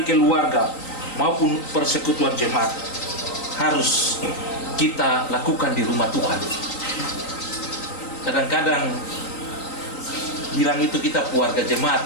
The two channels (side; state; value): right; late; 3.9 ms